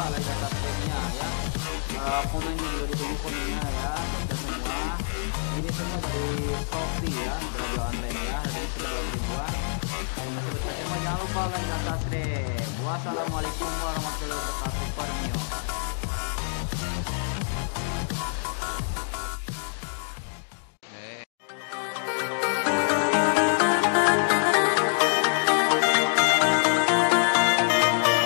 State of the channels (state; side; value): silent; right; digital silence